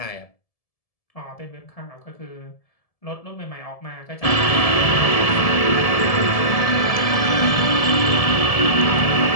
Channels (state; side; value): late; right; 1.7 ms